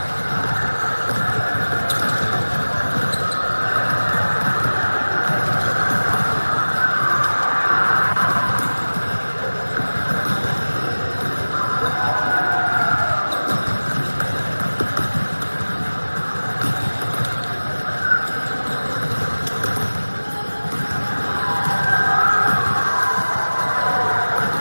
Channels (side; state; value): both; inverted; correlation -1.00